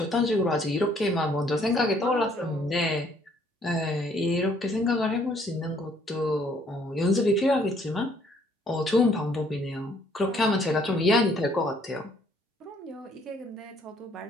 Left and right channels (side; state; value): both; normal; correlation 0.64